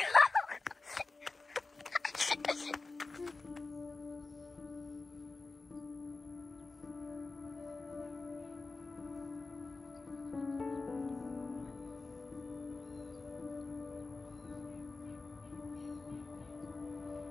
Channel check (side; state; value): right; quieter; 3.7 dB